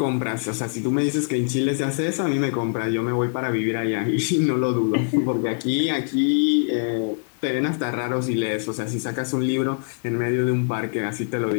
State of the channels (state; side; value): silent; right; digital silence